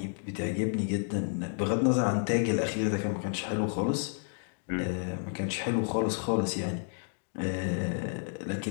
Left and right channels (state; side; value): silent; right; 57 dB below the other